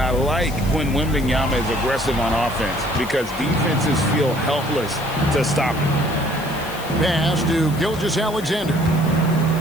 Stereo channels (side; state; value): left; noise; hiss, 16 dB below the sound